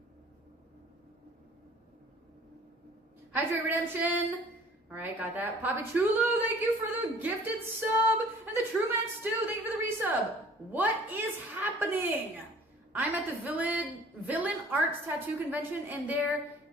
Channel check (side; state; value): both; normal; correlation 0.51